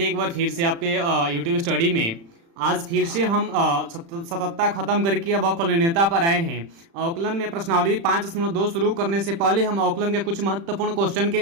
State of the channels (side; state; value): left; late; 36 ms